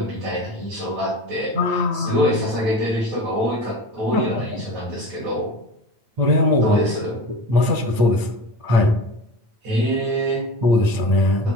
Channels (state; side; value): late; left; 9.0 ms